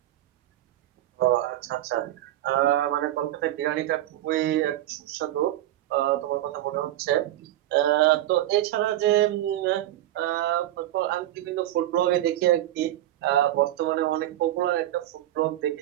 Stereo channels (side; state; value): left; quieter; 14.1 dB